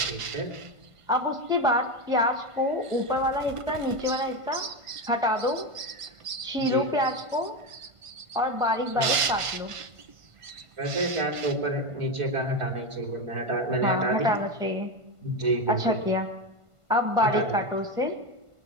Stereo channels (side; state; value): left; late; 1.5 ms